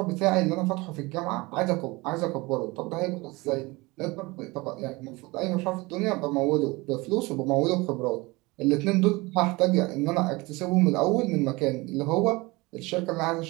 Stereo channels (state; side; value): quieter; left; 23.3 dB